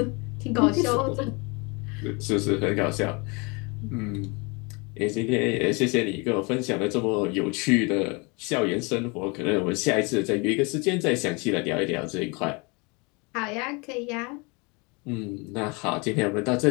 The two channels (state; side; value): quieter; right; 29.5 dB